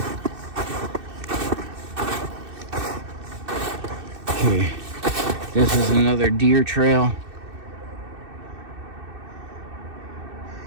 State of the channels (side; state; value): left; late; 2.6 ms